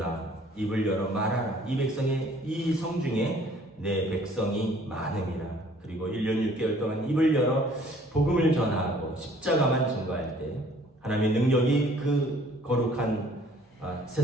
입을 열어 말하라. 이 성 중에 내 백성이 많음이라. 그리고 1년 6개월 동안 입을 열어 복음을 전하고 십자가만 증거할 때 하나님의 능력이 그 거룩한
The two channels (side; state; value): both; normal; correlation 0.57